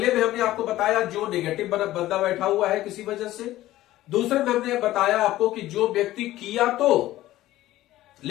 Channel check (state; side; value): quieter; right; 15.3 dB